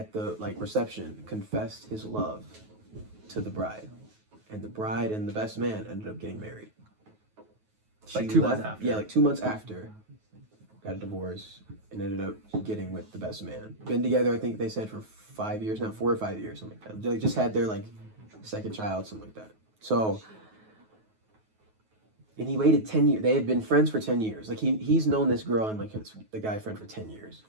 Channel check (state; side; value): late; left; 9.3 ms